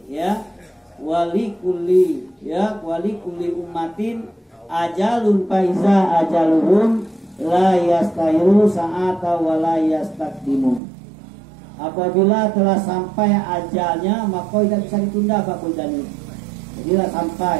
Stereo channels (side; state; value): left; drops out; at 10.8 s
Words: ya. Wali kulli ummatin ajalun faiza ajaluhum la yastahiru sa'ata wa la yastakdimun. Apabila telah sampai ajalnya maka tidak bisa ditunda Pak Bundani. Jadi lah sampai